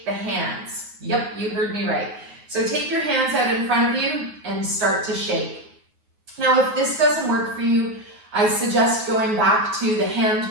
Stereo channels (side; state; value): left; late; 9.5 ms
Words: the hands. Yep, you heard me right. So take your hands out in front of you and start to shake. Now, if this doesn't work for you, I suggest going back to the hand